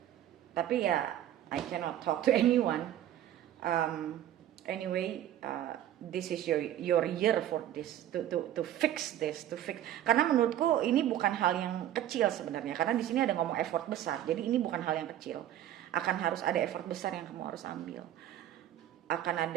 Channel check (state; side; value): quieter; left; 12.0 dB